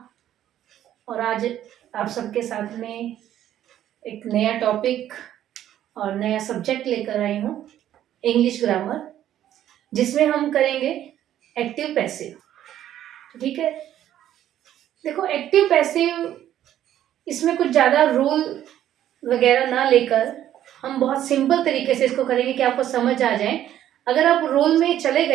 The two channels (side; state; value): left; quieter; 11.7 dB